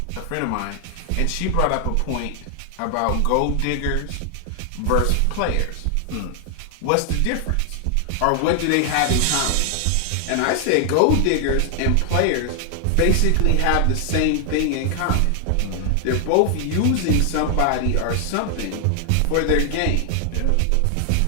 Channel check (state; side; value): different; both; correlation 0.00